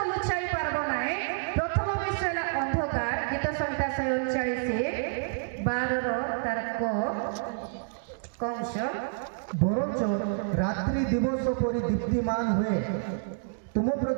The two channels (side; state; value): left; silent; digital silence